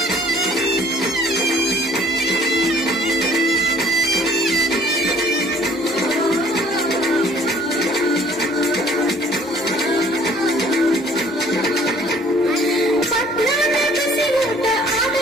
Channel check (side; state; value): both; normal; correlation 0.56